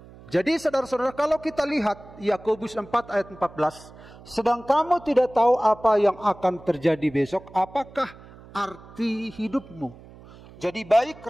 jadi saudara-saudara, kalau kita lihat Yakobus 4 ayat 14, sedang kamu tidak tahu apa yang akan terjadi besok, apakah arti hidupmu? Jadi baik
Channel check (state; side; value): noise; right; hum, 20 dB below the sound